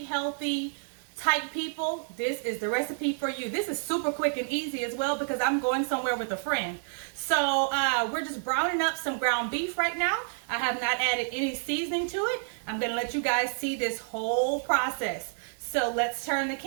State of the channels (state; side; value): silent; left; 58 dB below the other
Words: healthy type people, this is the recipe for you. This is super quick and easy as well because I'm going somewhere with a friend. So we're just browning up some ground beef right now. I have not added any seasoning to it. I'm going to let you guys see this whole process. So let's turn the